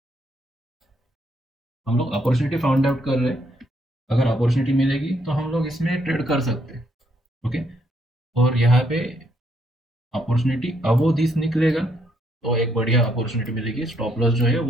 हम लोग अपॉर्चुनिटी फाउंड आउट कर रहे हैं। अगर अपॉर्चुनिटी मिलेगी तो हम लोग इसमें ट्रेड कर सकते हैं। ओके, और यहाँ पे अपॉर्चुनिटी अब वो दिस निकलेगा तो एक बढ़िया अपॉर्चुनिटी मिलेगी। स्टॉप लॉस जो है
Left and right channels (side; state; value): both; normal; correlation 0.73